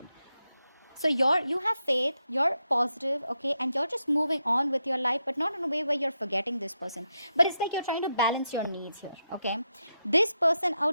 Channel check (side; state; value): both; inverted; correlation -0.85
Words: So you have faith, you're positive, okay, and you're just moving on with your life, but not in a way where you're forgetting this person. But it's like you're trying to balance your needs here. Okay, this person